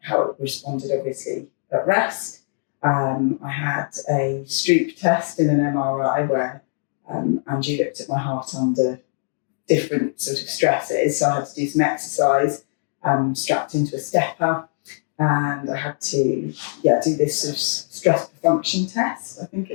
it responded, obviously, at rest. I had a Stroop test in an MRI where Andrew looked at my heart under different sort of stresses. So I had to do some exercise strapped into a stepper. And I had to do this sort of stress function test, I think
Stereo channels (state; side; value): silent; right; digital silence